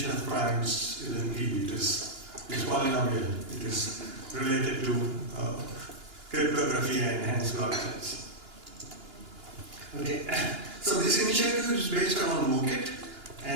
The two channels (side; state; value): left; late; 2.9 ms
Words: of primes isn't P, it is polynomial, it is related to cryptography and enhanced blockchains. Okay, so this initiative is based on MOOCit,